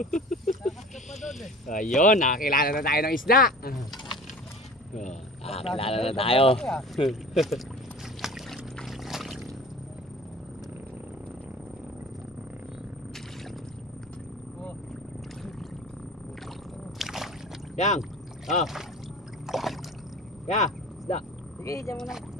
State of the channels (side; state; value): both; normal; correlation 0.41